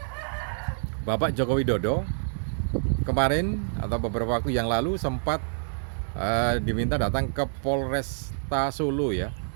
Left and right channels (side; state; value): left; silent; digital silence